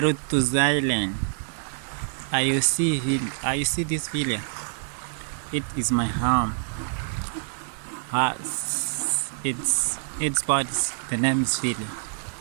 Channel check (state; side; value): silent; left; digital silence